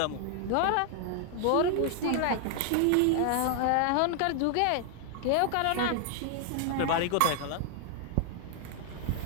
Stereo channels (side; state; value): both; different; correlation 0.00